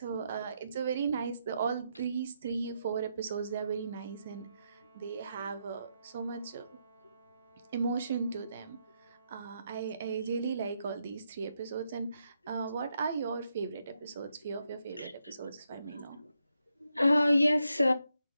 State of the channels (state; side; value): inverted; both; correlation -0.81